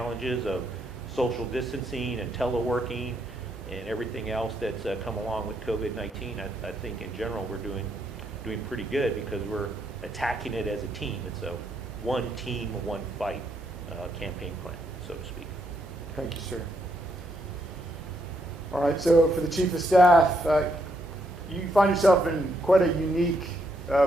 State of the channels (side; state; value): both; normal; correlation 0.76